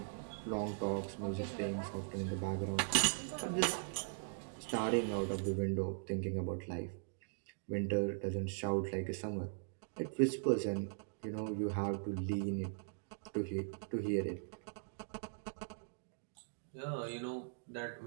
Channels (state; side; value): silent; left; digital silence